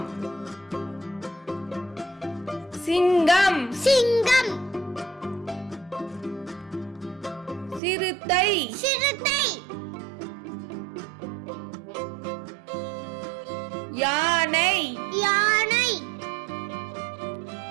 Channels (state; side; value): drops out; left; at 7.8 s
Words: சிங்கம், சிங்கம், சிறுத்தை, சிறுத்தை, யானை, யானை,